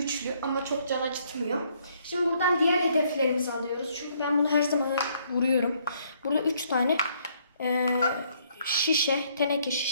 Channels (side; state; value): both; inverted; correlation -0.67